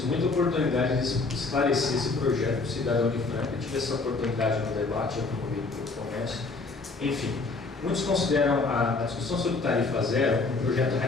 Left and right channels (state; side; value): quieter; right; 3.8 dB